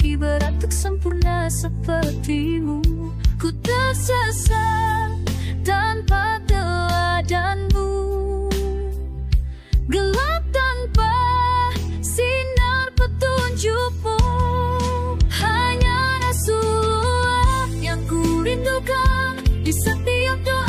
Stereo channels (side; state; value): both; identical; correlation 1.00